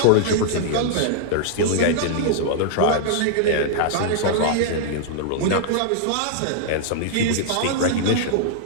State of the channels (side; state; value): both; different; correlation -0.01